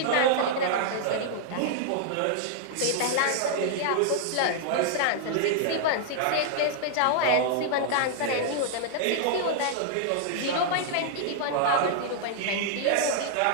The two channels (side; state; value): both; different; correlation -0.01